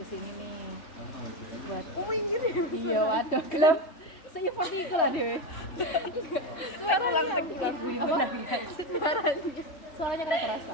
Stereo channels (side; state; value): right; late; 3.5 ms